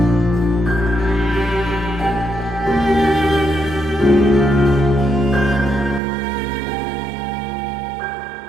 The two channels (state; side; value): drops out; left; at 6.0 s